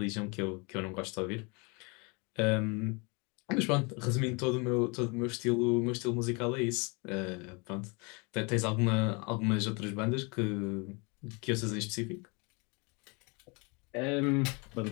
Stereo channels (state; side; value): quieter; right; 30.5 dB